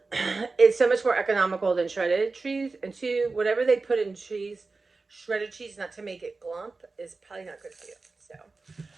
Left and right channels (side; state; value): left; quieter; 3.8 dB